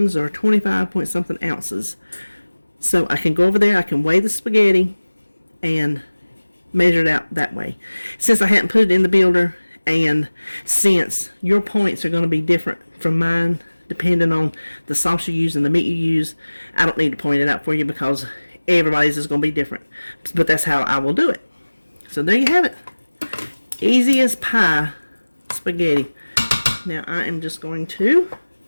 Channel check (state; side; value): inverted; both; correlation -1.00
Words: or 25 point something ounces. So I can go over there, I can weigh the spaghetti and measure it out that way. Since I hadn't put it in the builder, and since your points are going to be different from mine depending on the sauce you use and the meat you use. I don't need to point it out for you because everybody's is going to be different. But that's how I will do it. So there you have it. Easy as pie spaghetti. Now I am just going to